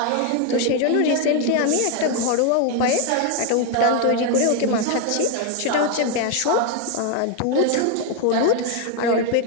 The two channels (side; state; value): both; different; correlation 0.01